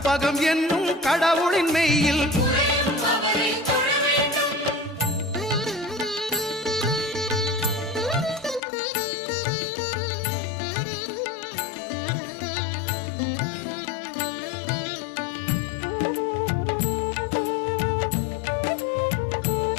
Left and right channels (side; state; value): right; drops out; at 8.6 s